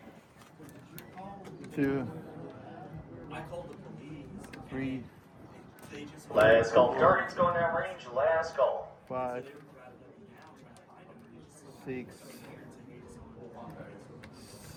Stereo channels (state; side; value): identical; both; correlation 1.00